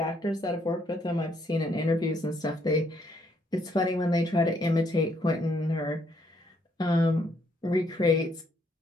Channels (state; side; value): normal; both; correlation 0.71